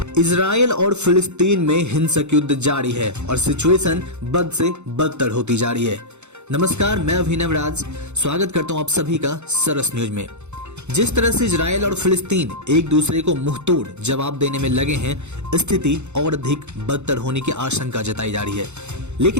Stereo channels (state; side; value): late; left; 0.82 ms